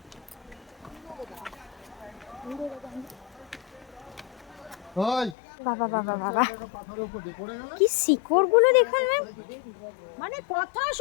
বাবা বাবা বাবা কি শিকড়গুলো দেখুন ম্যাম, মানে কথা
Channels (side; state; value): right; drops out; at 5.4 s